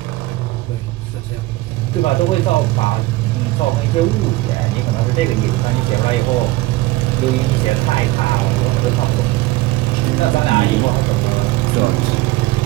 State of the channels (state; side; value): quieter; left; 18.6 dB